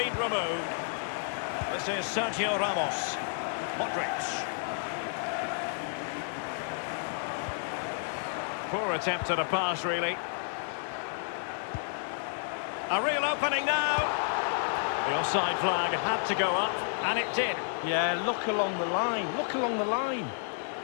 removed. This is Sergio Ramos. Modric. Poor attempt at a pass, really. A real opening now. The offside flag had to go up, and it did. Yeah, look along the line. Look along the line.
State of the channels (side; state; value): right; silent; 57 dB below the other